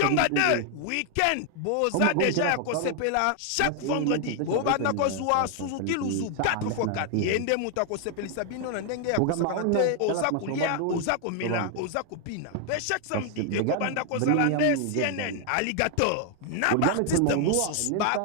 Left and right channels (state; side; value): different; both; correlation 0.00